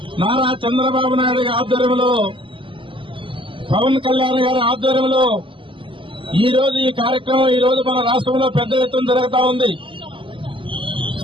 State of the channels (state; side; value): late; left; 0.25 ms